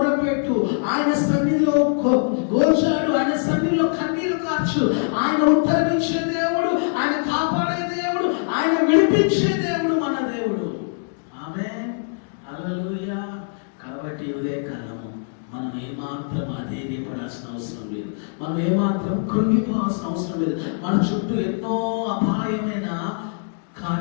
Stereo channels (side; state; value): right; silent; digital silence